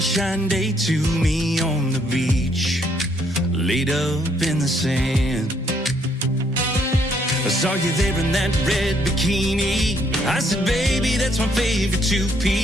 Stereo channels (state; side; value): normal; both; correlation 0.69